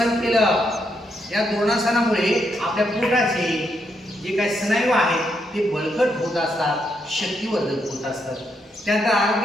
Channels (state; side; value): normal; both; correlation 0.79